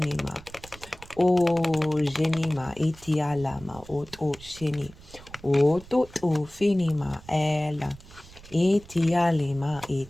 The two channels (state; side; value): noise; right; rumble, 20 dB below the sound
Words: genima itialama shini finima ela itialima